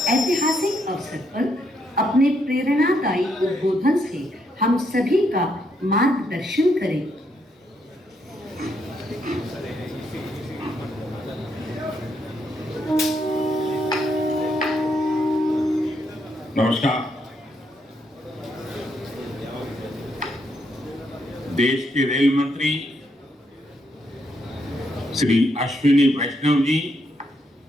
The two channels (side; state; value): both; normal; correlation 0.76